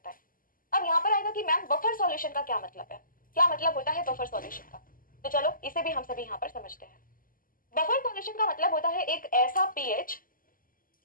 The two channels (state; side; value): late; right; 0.41 ms